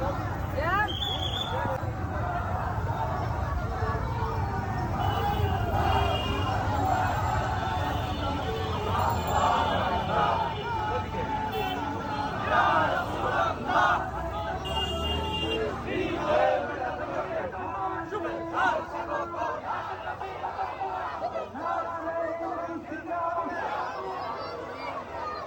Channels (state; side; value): identical; both; correlation 1.00